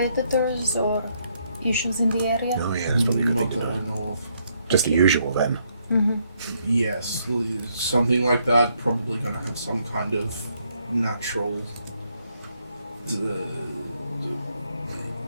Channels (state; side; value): inverted; both; correlation -0.73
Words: or issues in the area? Oh yeah, that's probably a good Not thing that to know. I know of. Just the usual then. Mm-hmm. Yes, something like that. Probably gonna have some kind of natural.